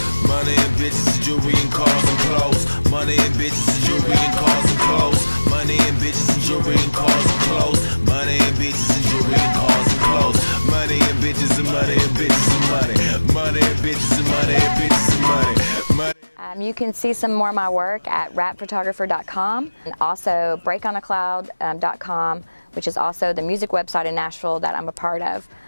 money and bitches, jewelry and cars and clothes. Money and bitches, jewelry and cars and clothes. Money and bitches, jewelry and cars and clothes. Money and bitches, jewelry and cars and clothes. Money and bitches and money and bitches and money. Money and bitches and money and bitches and money. You can see some more of my work at rapphotographer.com, and also breakonacloud.com, which is also the music website in Nashville that I'm a part of.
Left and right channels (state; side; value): inverted; both; correlation -1.00